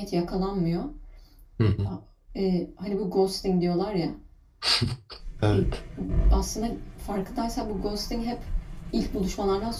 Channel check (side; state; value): both; identical; correlation 1.00